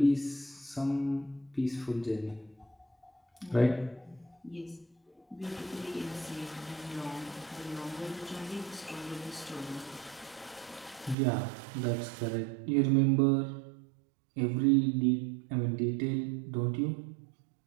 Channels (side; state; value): left; drops out; at 11.2 s